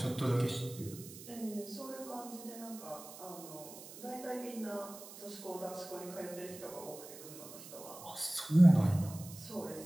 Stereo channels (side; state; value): right; noise; hiss, 15 dB below the sound